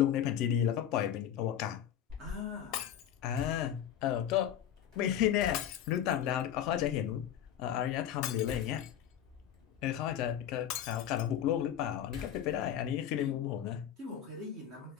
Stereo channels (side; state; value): right; quieter; 10.2 dB